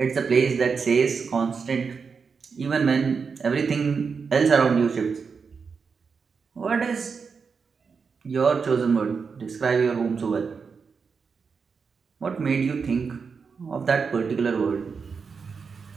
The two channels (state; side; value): quieter; left; 5.5 dB